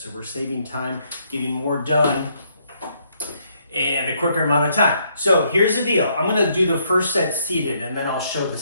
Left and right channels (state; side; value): inverted; both; correlation -0.71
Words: we're saving time, getting more done and a quicker amount of time. So here's the deal. I'm gonna do the first set seated and then I'll show the